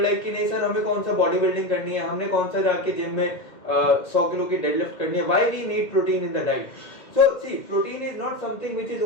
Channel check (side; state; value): right; late; 2.1 ms